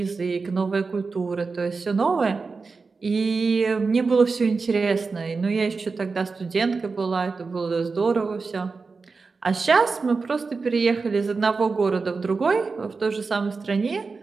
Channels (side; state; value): left; quieter; 4.4 dB